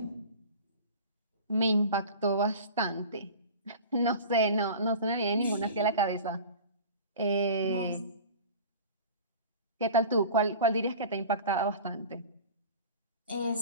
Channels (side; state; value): both; inverted; correlation -0.38